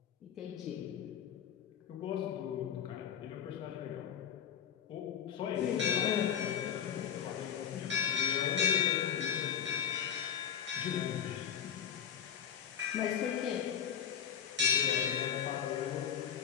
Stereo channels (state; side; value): quieter; right; 8.7 dB